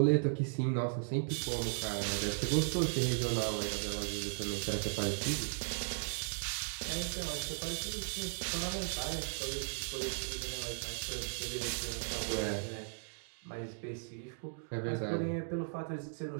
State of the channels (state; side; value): silent; left; digital silence